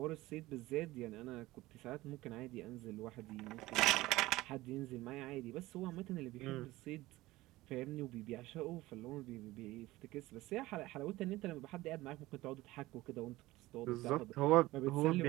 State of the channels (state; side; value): quieter; left; 18.3 dB